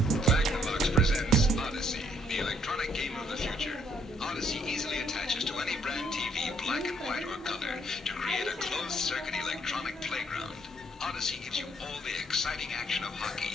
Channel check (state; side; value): normal; both; correlation 0.68